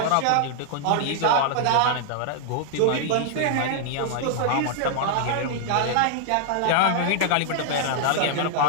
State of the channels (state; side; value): different; both; correlation 0.00